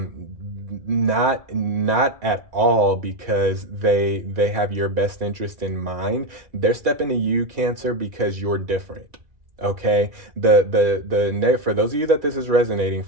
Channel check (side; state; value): left; late; 2.0 ms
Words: Not at all because they have your best interest in mind. They're stepping to you, Cancer, because you're different. Okay, for those of you that this is resonating